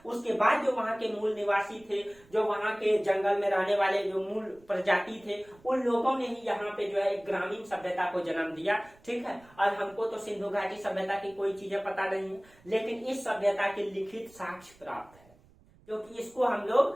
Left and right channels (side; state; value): right; noise; rumble, 28 dB below the sound